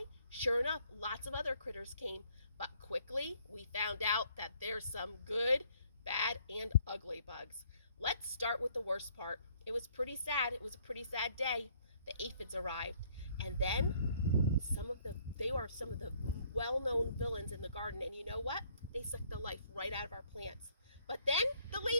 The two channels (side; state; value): both; inverted; correlation -0.64